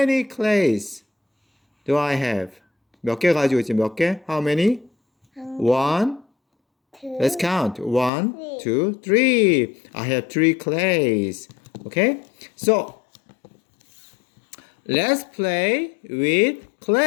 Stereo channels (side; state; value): right; drops out; at 8.1 s